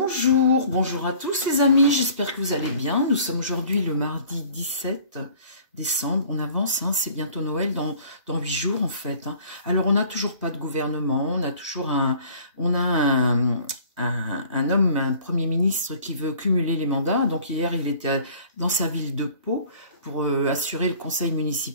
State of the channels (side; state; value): both; inverted; correlation -0.51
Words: bonjour à tous les amis, j'espère que vous allez bien. Nous sommes aujourd'hui le mardi 17 décembre, on avance, hein, c'est bientôt Noël dans 8 jours en fait. Hein. Alors on n'a toujours pas de gouvernement, on a toujours un homme, un premier ministre qui veut cumuler les mandats. Donc hier il était dans sa ville de Pau pour assurer le conseil